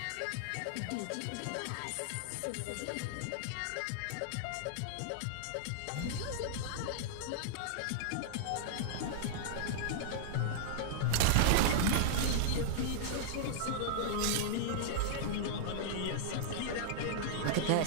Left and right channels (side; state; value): both; different; correlation -0.02